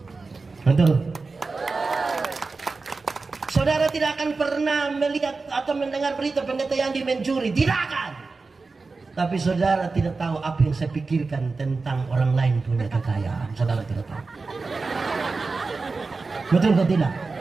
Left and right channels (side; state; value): left; quieter; 4.0 dB